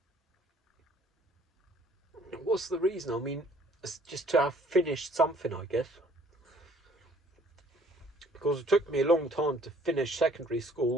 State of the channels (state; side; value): normal; both; correlation 0.58